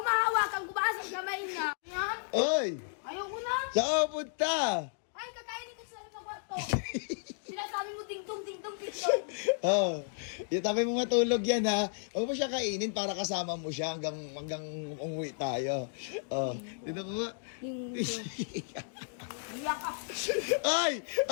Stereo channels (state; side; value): silent; right; digital silence